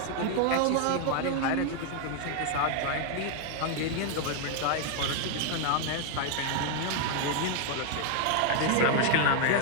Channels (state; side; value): different; both; correlation 0.00